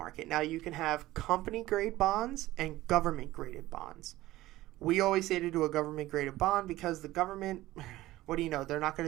Now, you can have company-grade bonds and government-graded bonds. We always say to do a government-graded bond because the government, what do you know, they're not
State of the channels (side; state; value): left; quieter; 16.7 dB